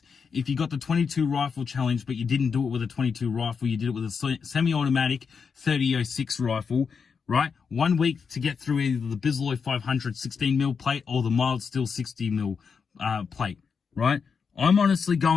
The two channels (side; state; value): right; quieter; 5.9 dB